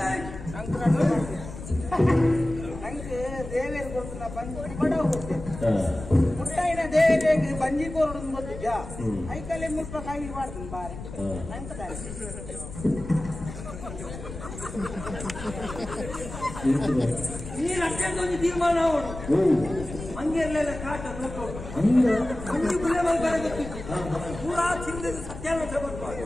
ನಂಗೆ ದೇವೇರು ಕೊಡ್ತು ಬಂದು ಬಡ ಹೋಗ್ತೇನೆ ಮುಟ್ಟಾಯಿನ ದೇವೇರಿಗೆ ಬಂಜಿ ಕೋರ್ಡು ಗೊತ್ತಿದ್ದ ಐಕಲ್ಲೇ ಮುಲ್ಪ ಕಾಯಿ ಮಾಡ್ತೀನಿ ಬಾರಿ ನಂಗೆ ನೀರು ಅಷ್ಟೊಂದು ತೀರ್ಮಾನ ಅವನು ಹಂಗೆಲ್ಲ ಕಾಟ ಮಂಜು ಗುಲೆ ಮಲ್ಬಾರ ಗೊತ್ತಿತ್ತು ಪೂರಾ ಚಿಂದ ಸತ್ಯಾನಾಶ ಬರ್ತಾರೆ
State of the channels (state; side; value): noise; left; rumble, 11 dB below the sound